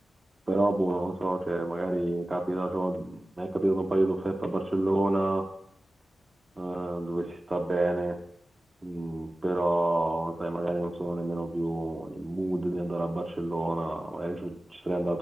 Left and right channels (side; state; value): both; normal; correlation 0.96